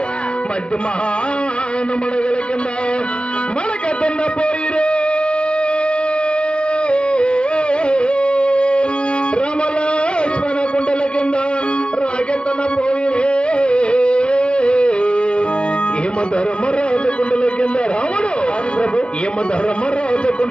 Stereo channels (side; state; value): right; late; 0.055 ms